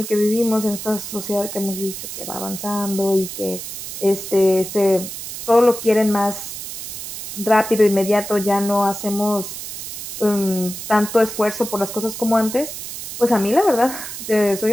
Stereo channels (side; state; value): right; noise; hiss, 8 dB below the sound